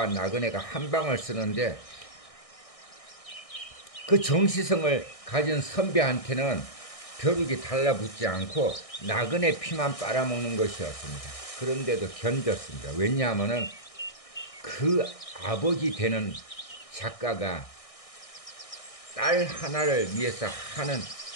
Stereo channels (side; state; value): right; late; 1.6 ms